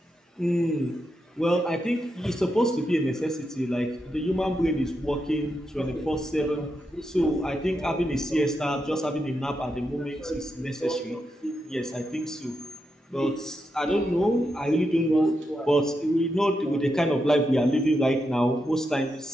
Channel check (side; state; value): both; normal; correlation 0.85